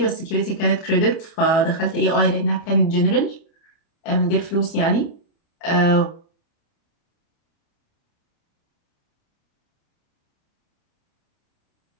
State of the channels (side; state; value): right; late; 29 ms